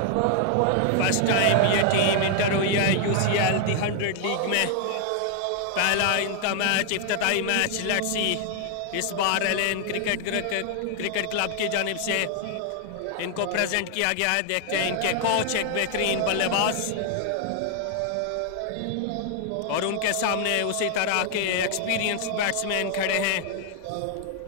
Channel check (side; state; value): both; different; correlation 0.00